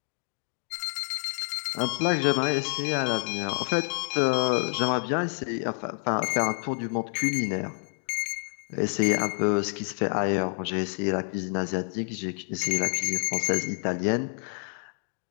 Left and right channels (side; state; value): right; silent; 55 dB below the other